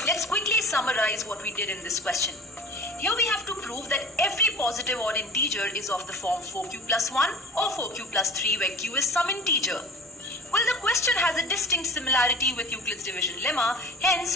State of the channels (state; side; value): normal; both; correlation 0.39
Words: Let's quickly summarize what we did in this question. Here we have to prove that every positive odd integer is of the form 4q plus 1 or 4q plus 3 where q is some integer. Well, the question has a distinct similarity with Euclid's division lemma,